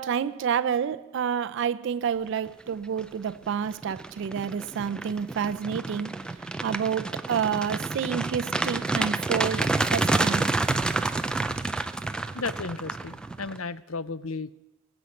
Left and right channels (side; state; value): left; quieter; 4.3 dB